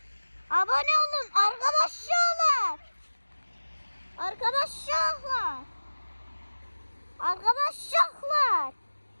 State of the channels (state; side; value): inverted; both; correlation -1.00